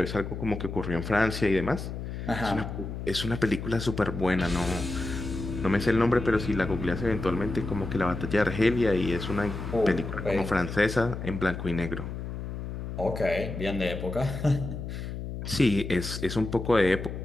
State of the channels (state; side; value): noise; left; hum, 7 dB below the sound